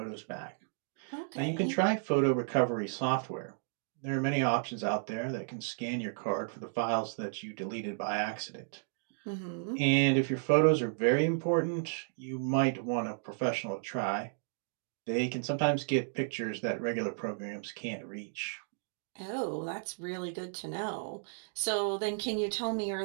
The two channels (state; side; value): silent; left; digital silence